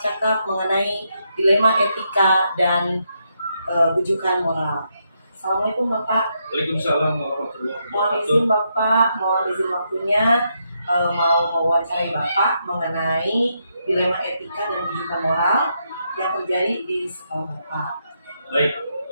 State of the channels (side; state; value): both; inverted; correlation -0.80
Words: mengenai dilema etika dan bujukan moral. Assalamualaikum Bapak. Waalaikumsalam warahmatullahi Mohon wabarakatuh. izin Bapak, mohon izin waktunya mau mewawancarai Bapak mengenai dilema etika dan bujukan moral yang terjadi di sekolah Bapak. Baik,